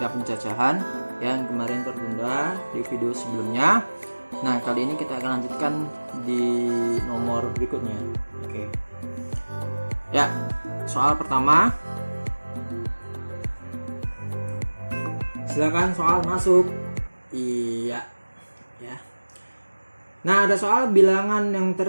pencacahan yang kemarin tertunda di video sebelumnya. Nah, kali ini kita akan lanjutkan di nomor berikutnya. Oke. Ya, soal pertama. Silakan soal masuk. Iya, ya. Nah, ada soal bilangan yang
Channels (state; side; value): inverted; both; correlation -1.00